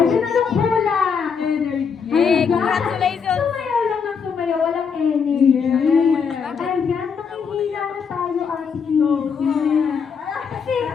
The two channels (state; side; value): quieter; right; 6.2 dB